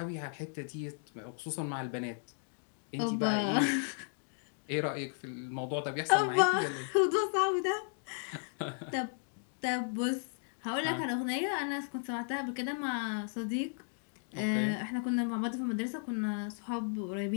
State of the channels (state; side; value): silent; right; 55 dB below the other